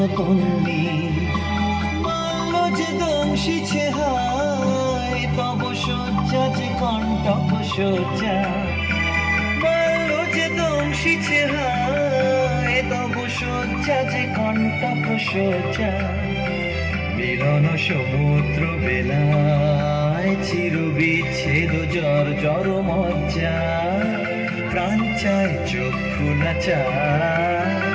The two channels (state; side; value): identical; both; correlation 1.00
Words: তন্নি। যে দংশিছে হায়, তব শয্যা যে কণ্টক শয্যা। বাল্য যে দংশিছে হায়, তব শয্যা যে কণ্টক শয্যা। মিলন সমুদ্র বেলায়, চির বিচ্ছেদ জর জর মজ্জা। প্রাণ চায় চক্ষু না চায়,